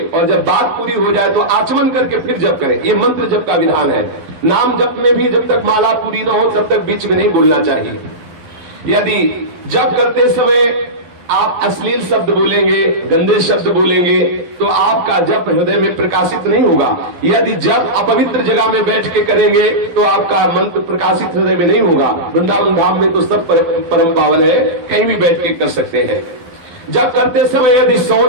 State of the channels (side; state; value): left; late; 11 ms